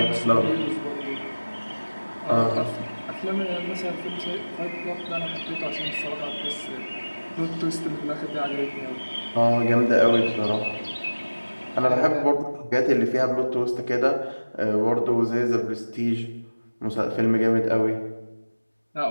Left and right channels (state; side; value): inverted; both; correlation -1.00